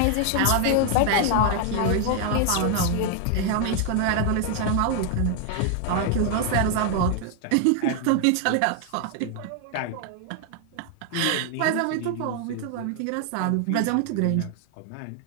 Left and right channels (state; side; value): different; both; correlation 0.00